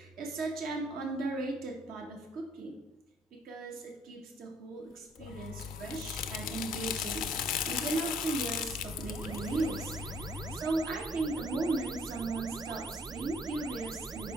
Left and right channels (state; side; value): normal; both; correlation 0.62